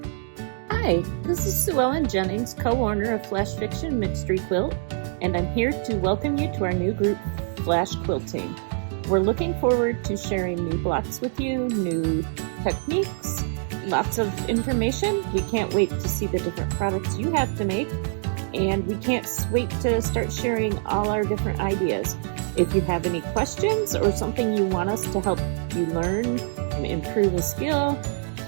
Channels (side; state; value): left; silent; digital silence